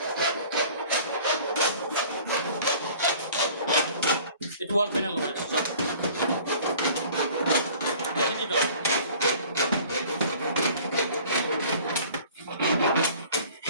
এটা ওয়াল প্যানেল বানাইছো চাও ঠিক আছে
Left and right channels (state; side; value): inverted; both; correlation -0.49